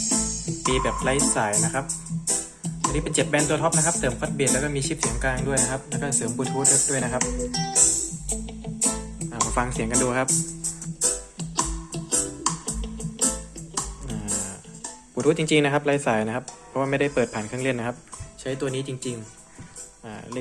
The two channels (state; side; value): identical; both; correlation 1.00